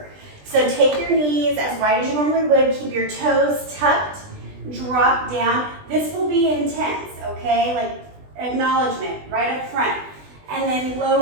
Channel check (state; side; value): late; left; 20 ms